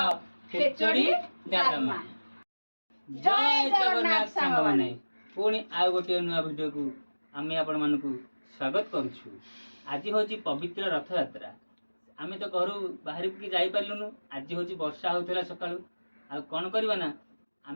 खेचड़ी डालमा। जय जगन्नाथ सांग माने पुणी आ गोटे नुआ वीडियो को आमे आपण मानकू स्वागत करूछु। आज होची पवित्र रथ यात्रा। आमे तो घर बाहर की जाई पारलुनु। आज होची वर्षा होतला सकाळू। आ कोन करबा ना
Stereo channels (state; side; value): inverted; both; correlation -1.00